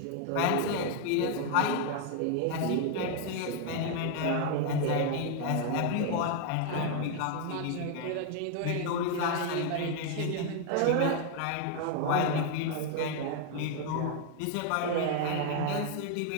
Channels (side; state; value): both; different; correlation 0.01